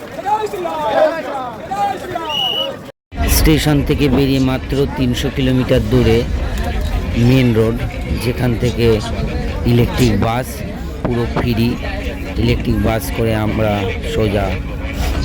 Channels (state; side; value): identical; both; correlation 1.00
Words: স্টেশন থেকে বেরিয়ে মাত্র 300 কিলোমিটার দূরে মেন রোড, যেখান থেকে ইলেকট্রিক বাস পুরো ফ্রি। ইলেকট্রিক বাস করে আমরা সোজা